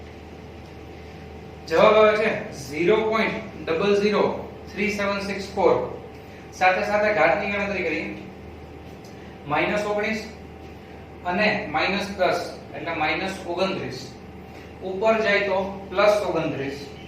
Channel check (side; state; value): both; identical; correlation 1.00